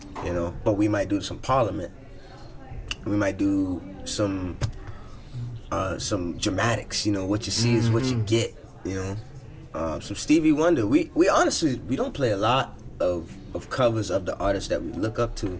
But we might do some Parliament. We might do some dramatics, what you see is what you get, Some Stevie Wonder. We honestly, we don't play a lot of covers of the artists that we look up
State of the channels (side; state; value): both; identical; correlation 1.00